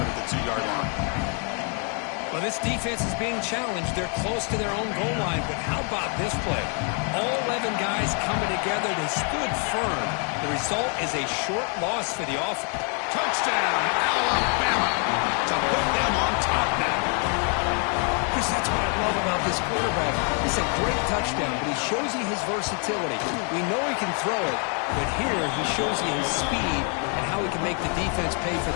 at the 2-yard line. Well, this defense is being challenged. They're close to their own goal line, but how about this play? All 11 guys coming together. They stood firm. The result is a short loss for the offense. Touchdown, Alabama, to put them on top now. Chris, that's what I love about this quarterback. It's a great touchdown, but he shows you his versatility. We know he can throw it, but here he shows you his speed and how he can make the defense pay for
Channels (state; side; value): quieter; right; 39.8 dB